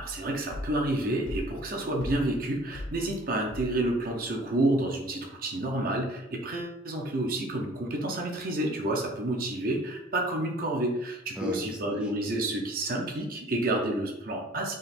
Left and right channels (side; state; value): both; normal; correlation 0.51